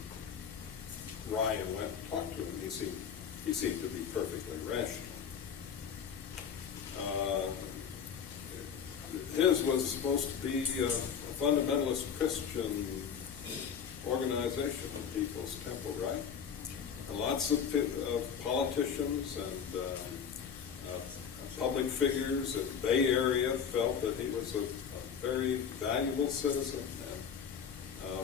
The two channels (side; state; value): right; quieter; 7.3 dB